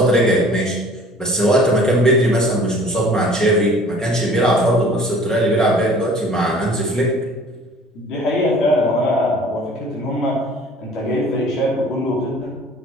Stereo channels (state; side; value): normal; both; correlation 0.50